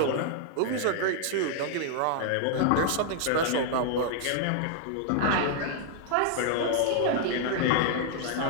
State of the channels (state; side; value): different; both; correlation 0.00